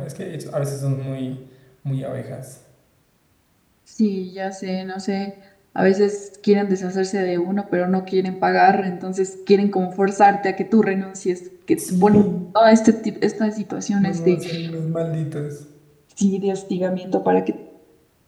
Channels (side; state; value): both; identical; correlation 1.00